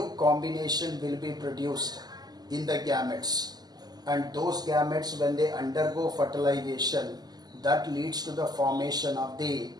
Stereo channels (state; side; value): late; left; 0.20 ms